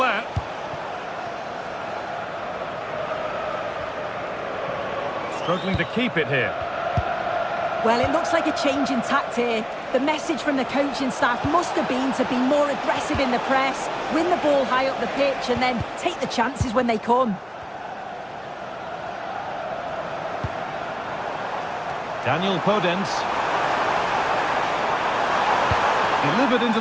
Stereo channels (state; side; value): identical; both; correlation 1.00